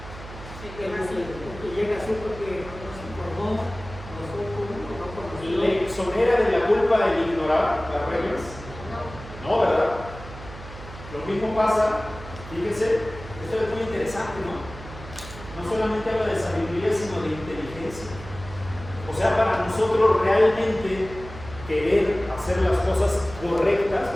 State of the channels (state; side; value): noise; right; hum, 14 dB below the sound